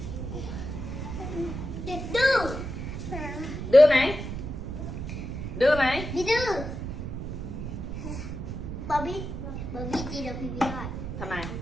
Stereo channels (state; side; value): noise; right; rumble, 6 dB below the sound